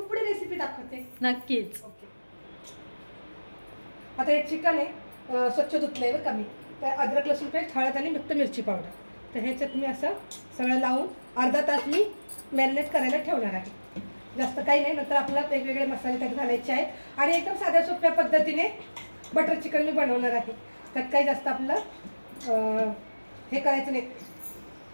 पुढे रेसिपी दाखवते. नक्कीच. ओके. आता हे चिकन आहे, स्वच्छ धुतलंय बरं का मी. तर अद्रक लसूण पेस्ट, हळद आणि फक्त मिरची पावडर, तर ह्याच्यात मी असं सगळं लावून अर्धा तास मी मॅरिनेट करायला ठेवणार आहे. जास्त काही नाही, नंतर आपल्याला वेगवेगळे मसाले त्यात घालायचे आहेत. आणि एकदम साध्या सोप्या पद्धतीने बटर चिकन मी बनवणार आहे. त्यात काही जास्त आपलं हे करायचं नाही.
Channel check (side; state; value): both; inverted; correlation -1.00